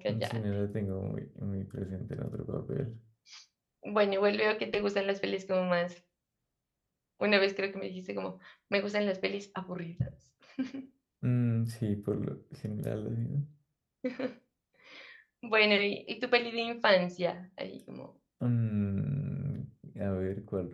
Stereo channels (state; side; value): identical; both; correlation 1.00